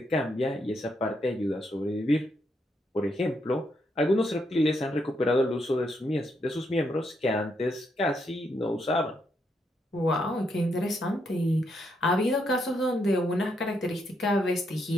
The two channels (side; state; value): both; normal; correlation 0.78